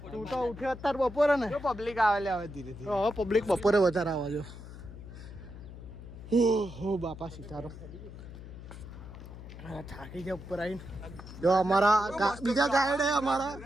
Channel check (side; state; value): left; noise; hum, 13 dB below the sound